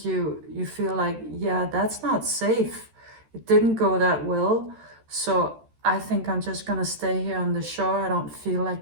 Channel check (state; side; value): late; left; 13 ms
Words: you feel like, yeah, that's not safe. It didn't go that well, so I think I'm just gonna stay here on the shore. I don't feel like